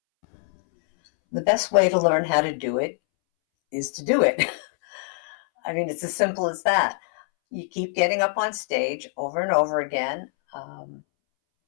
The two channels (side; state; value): right; silent; 62 dB below the other